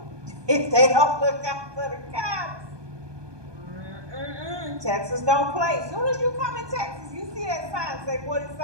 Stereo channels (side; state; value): left; late; 1.2 ms